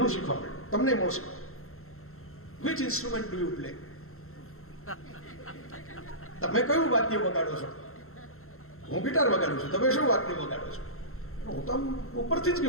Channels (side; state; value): right; late; 0.62 ms